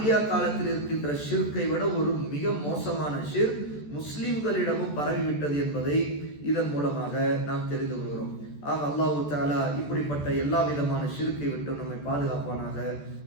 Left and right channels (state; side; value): late; right; 14 ms